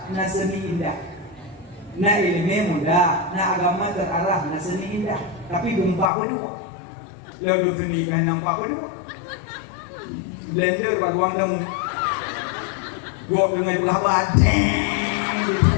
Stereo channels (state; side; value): drops out; right; at 6.1 s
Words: na seni indah. Na ilmu mudah, na agama terarah, na seni indah. Tapi gempa pun dua. Lalu seni kan nampak pun dua. Blender baguang demu. Gua dengan belah badan.